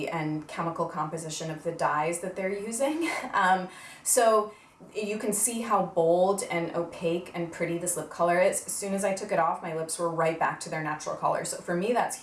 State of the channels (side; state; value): both; identical; correlation 1.00